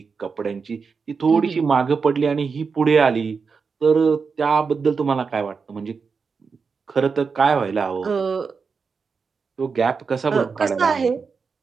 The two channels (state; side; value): quieter; left; 5.3 dB